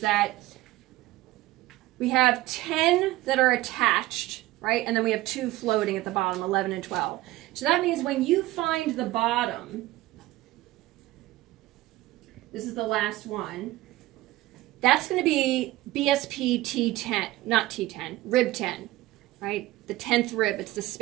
that we have 10 that are attached, right? And then we have 2 floating at the bottom, 11 and 12. So that means when you find the bottom, this is the last one, that's going to be BSP T10, not T10, rib 10, right? The 10th rib, it's the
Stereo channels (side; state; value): left; quieter; 17.4 dB